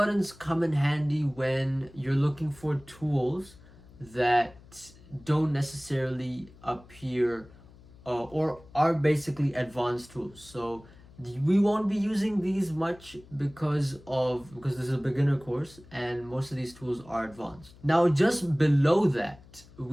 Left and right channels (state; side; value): noise; left; hum, 23 dB below the sound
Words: come in handy when you're looking for tools that don't necessarily appear or are basically advanced tools. So we won't be using these much because this is a beginner course and most of these tools are advanced. Now just below that